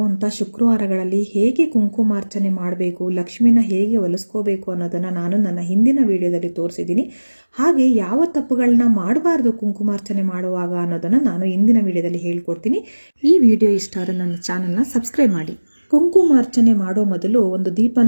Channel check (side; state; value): both; inverted; correlation -1.00